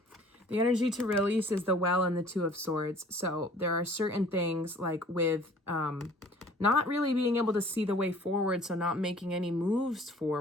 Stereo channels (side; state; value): both; normal; correlation 0.52